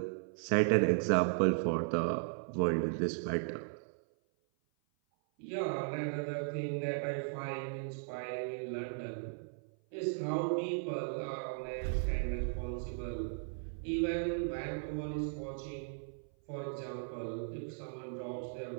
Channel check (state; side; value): silent; left; 53 dB below the other